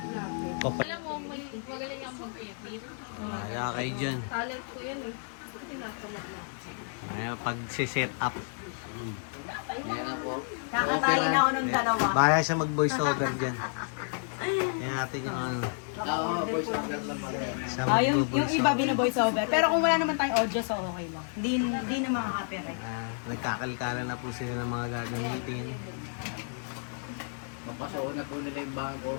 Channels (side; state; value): right; silent; 57 dB below the other